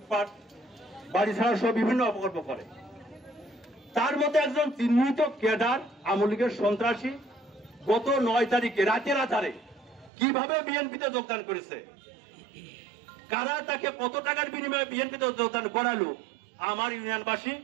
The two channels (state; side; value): drops out; left; at 10.1 s